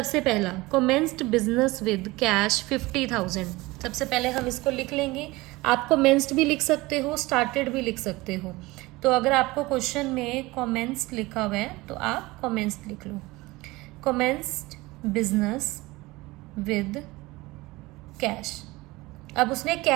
पहला, कमेंस्ड बिजनेस विद कैश 50,000। सबसे पहले हम इसको लिख लेंगे। आप कमेंस्ड भी लिख सकते हो, स्टार्टेड भी लिख सकते हो। तो अगर आपको क्वेश्चन में कमेंस्ड लिखा हुआ है तो आप कमेंस्ड लिख लो। Commenced business with cash. अब उसने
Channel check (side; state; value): left; quieter; 21.1 dB